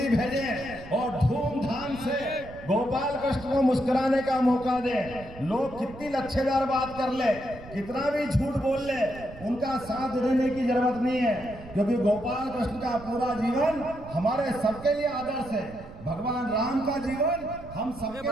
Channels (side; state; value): right; noise; rumble, 16 dB below the sound